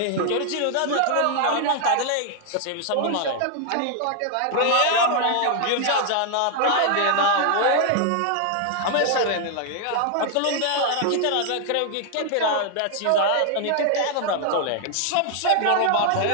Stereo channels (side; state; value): both; different; correlation 0.00